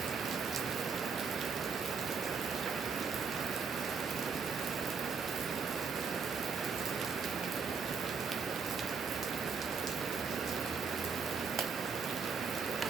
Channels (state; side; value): quieter; left; 5.6 dB